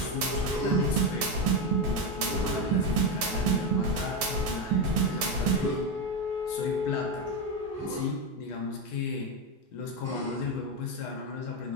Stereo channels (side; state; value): both; normal; correlation 0.11